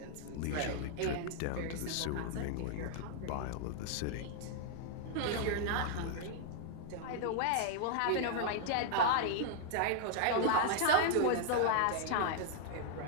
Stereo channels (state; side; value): different; both; correlation -0.01